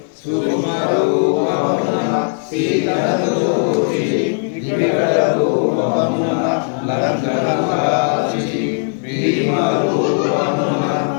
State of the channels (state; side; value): silent; right; 68 dB below the other